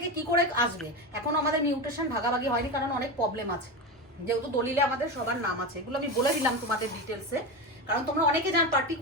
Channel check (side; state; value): both; normal; correlation 0.19